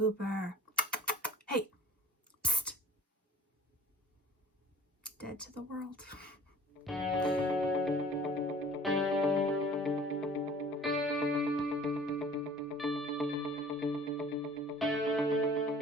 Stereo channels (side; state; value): both; normal; correlation 0.48